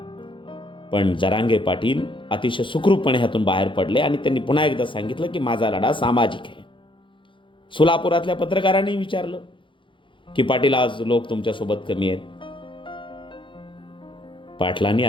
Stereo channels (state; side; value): late; right; 0.24 ms